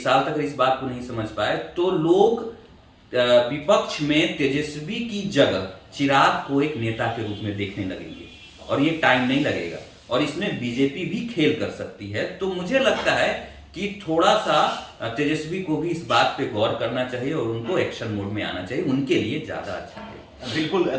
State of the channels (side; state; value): both; identical; correlation 1.00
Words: तक इस बात को नहीं समझ पाए, तो लोग विपक्ष में तेजस्वी की जगह चिराग को एक नेता के रूप में देखने लगेंगे और ये टाइम नहीं लगेगा और इसमें बीजेपी भी खेल कर सकती है। तो मुझे लगता है कि थोड़ा सा तेजस्वी को भी इस बात पे गौर करना चाहिए और उनको एक्शन मोड में आना चाहिए, उनके लिए ज्यादा अच्छा है। बिल्कुल,